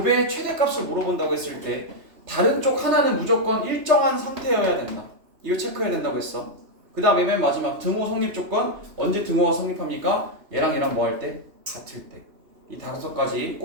최대값을 물어본다고 했을 때 다른 쪽 하나는 무조건 일정한 상태여야 된다. 이거 체크해야 된다고 했어. 그 다음에 맨 마지막 등호 성립 조건. 언제 등호가 성립합니까? 얘랑 얘랑 뭐 할 때? 같을 때. 이 5가지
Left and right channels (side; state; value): left; late; 2.9 ms